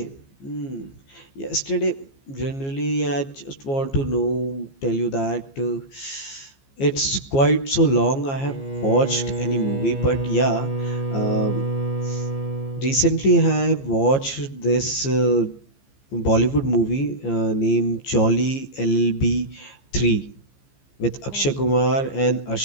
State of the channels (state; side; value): late; right; 15 ms